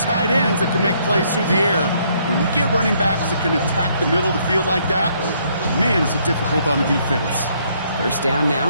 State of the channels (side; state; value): both; inverted; correlation -0.69